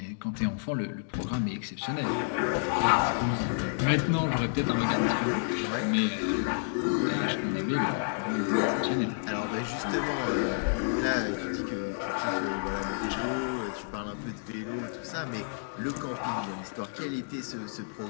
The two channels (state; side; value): silent; right; digital silence